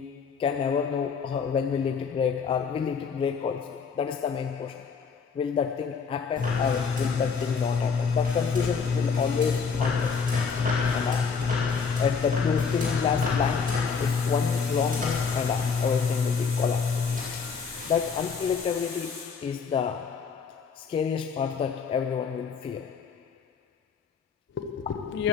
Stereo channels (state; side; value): quieter; right; 5.7 dB